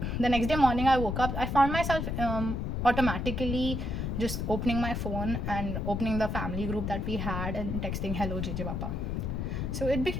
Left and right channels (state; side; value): noise; left; rumble, 2 dB below the sound